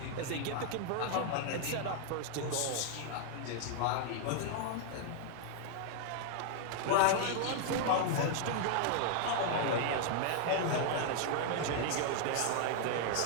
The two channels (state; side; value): different; both; correlation 0.00